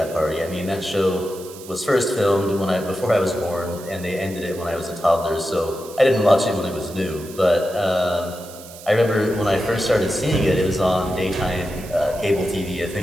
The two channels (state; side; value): noise; right; hiss, 17 dB below the sound